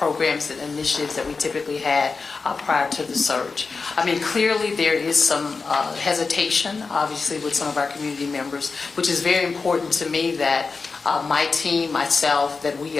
and initiatives that we typically had prior to the surge. I mean, clearly there is some hesitation, obviously, with some of our community members, which is very important to me that my team, myself, that we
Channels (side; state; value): right; quieter; 4.5 dB